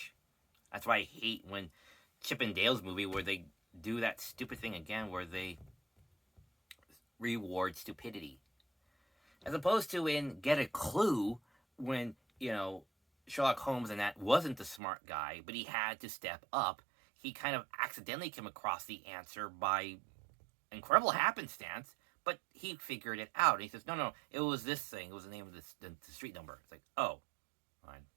That's why I hate when Chip and Dale's movie where they do that stupid thing again where they reward stupidity. As opposed to in Get a Clue when, you know, Sherlock Holmes and that wasn't the smart guy, but he had to step up. He kind of accidentally came across the answer by incredible happenstance, but he figured it out. And he says, no, it was this thing. It was the name of the street number. It's like, oh, fine.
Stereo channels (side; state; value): left; drops out; at 14.8 s